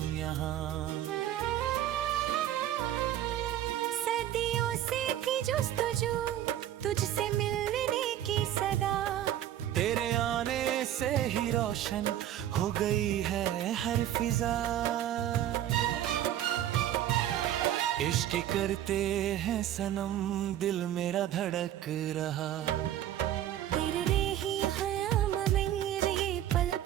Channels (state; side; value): quieter; left; 11.9 dB